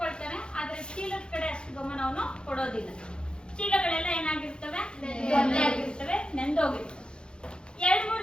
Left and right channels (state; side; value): late; right; 0.051 ms